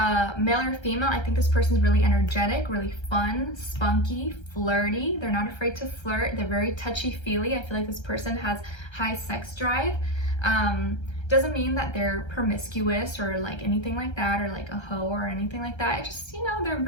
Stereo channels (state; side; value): late; right; 1.3 ms